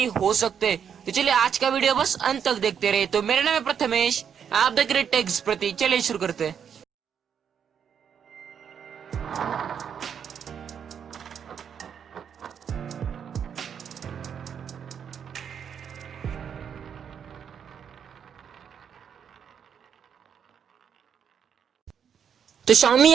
हो सकते हैं। तो चलिए आज का वीडियो बस अंत तक देखते रहे। तो मेरा नाम है प्रथमेश, आप देख रहे टेक्स प्रति। चलिए शुरू करते हैं। तो Xiaomi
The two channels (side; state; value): left; quieter; 7.8 dB